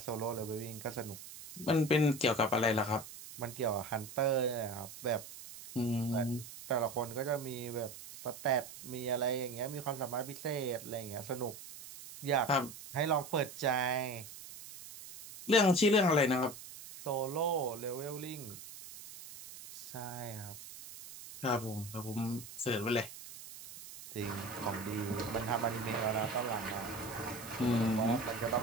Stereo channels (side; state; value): right; noise; hiss, 14 dB below the sound